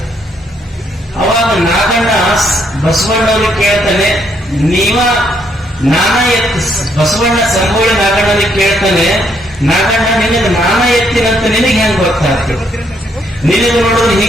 ಅವಾಗ ನಾಗಣ್ಣ ಬಸವಣ್ಣವ್ರಿಗೆ ಕೇಳ್ತಾನೆ, ನಾನ ಎತ್ತಿ. ಬಸವಣ್ಣ ಸಂಬೋಳಿ ನಾಗಣ್ಣನಿಗೆ ಕೇಳ್ತಾನೆ, ನಾಗಣ್ಣ ನಿನಗೆ ನಾನ ಎತ್ತಿನಂತ ನಿನಗೆ ಹೆಂಗ್ ಗೊತ್ತಾಗ್ತದೆ? ನಿನಗೆ ನೋಡೋದು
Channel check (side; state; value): both; normal; correlation 0.72